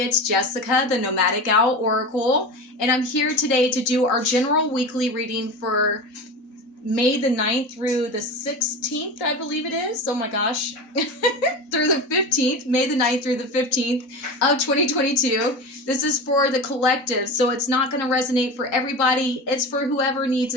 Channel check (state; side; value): late; right; 4.0 ms